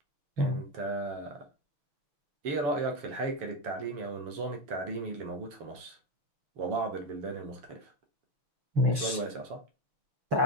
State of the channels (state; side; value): late; left; 6.3 ms